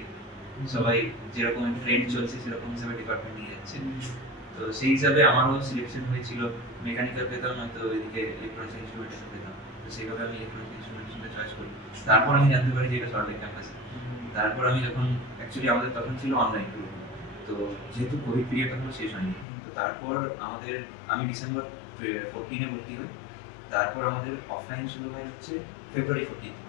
সবাই যেরকম ট্রেন্ড চলছে সেরকম হিসাবে ডিপার্টমেন্ট নিয়ে যাচ্ছে। তো সেই হিসাবে আমারও সিলেকশন হয়েছিল, মেকানিক্যাল পেতাম, নয়তো এদিকে ইলেকট্রনিক্স ইনস্ট্রুমেন্টেশন পেতাম। তো সেইভাবে আমি ইলেকট্রনিক্স ইনস্ট্রুমেন্টেশনটা চয়েস করি। তারপর আমি জানতে পারি যে এটা সরকারি ক্যাম্পাসে। তারপর আমি যখন অ্যাকচুয়ালি আমাদের তখন ছিল অনলাইন, তো যেহেতু কোভিড পিরিয়ড তখন শেষ হয়নি, তো তারপর আমি ডিসেম্বর 14-এ ভর্তি হই। তারপর আমাদের অফলাইন শুরু হয় হচ্ছে ফেব্রুয়ারি 15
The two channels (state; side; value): drops out; right; at 19.5 s